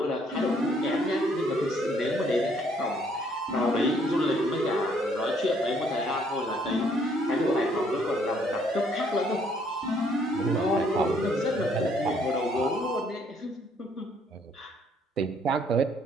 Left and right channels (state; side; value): normal; both; correlation 0.66